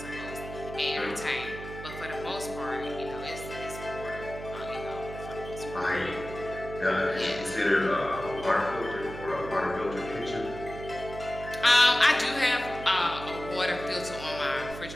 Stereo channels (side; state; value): right; noise; hum, 11 dB below the sound